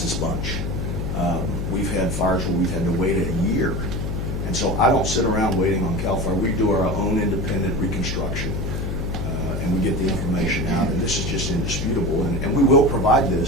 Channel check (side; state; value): left; noise; hum, 2 dB below the sound